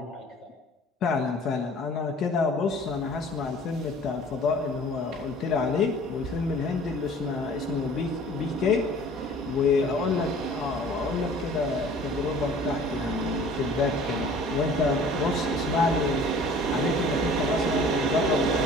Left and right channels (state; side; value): normal; both; correlation 0.48